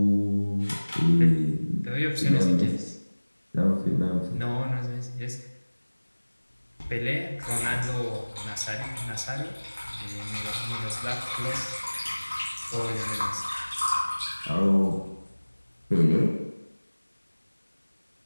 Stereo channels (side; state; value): both; inverted; correlation -1.00